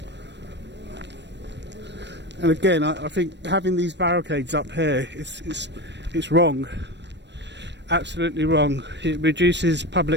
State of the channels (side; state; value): left; late; 0.51 ms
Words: And again, I think having these barricades up here, it's wrong. absolutely wrong. It reduces